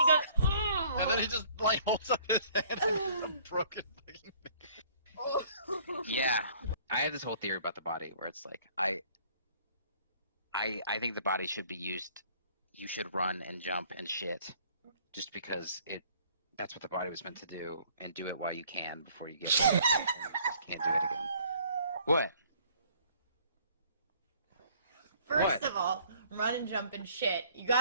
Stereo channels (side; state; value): both; inverted; correlation -0.57